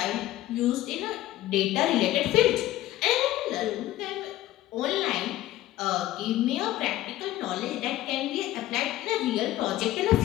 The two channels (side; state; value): right; quieter; 15.0 dB